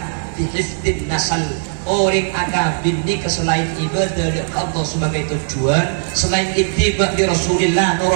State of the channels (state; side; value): silent; left; 67 dB below the other